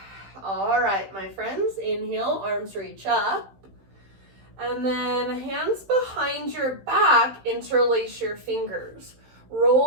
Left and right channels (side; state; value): left; late; 15 ms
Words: All right, my friends, inhale, arms reach up. And then hands behind your back, interlace your fingers.